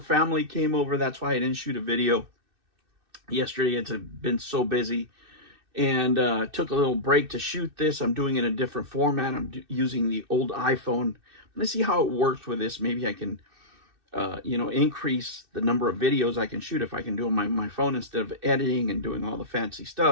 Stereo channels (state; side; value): late; left; 2.6 ms